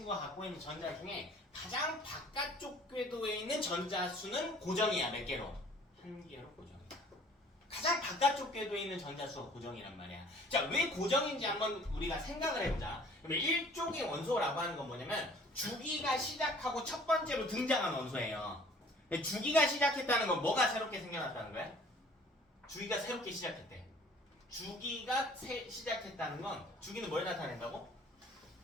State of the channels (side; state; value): both; normal; correlation 0.53